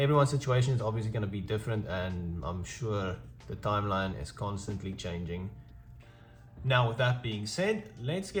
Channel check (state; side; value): identical; both; correlation 1.00